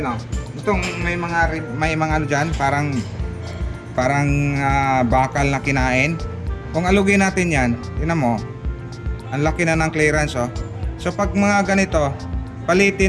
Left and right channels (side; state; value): both; identical; correlation 1.00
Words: o. Itong may mga ano dyan, parang bakal na kinain. Kung alugin natin yan, tingnan mo, ang laki na ng clearance oh. So pag mga ganito,